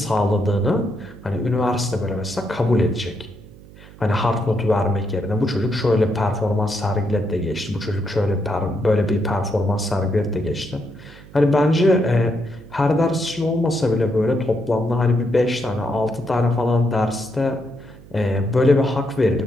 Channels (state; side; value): noise; right; hum, 20 dB below the sound